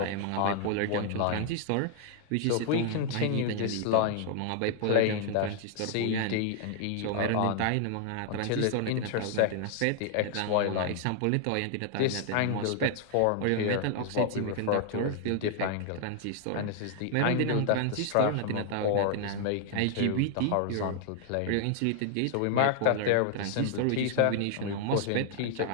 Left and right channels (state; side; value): different; both; correlation 0.00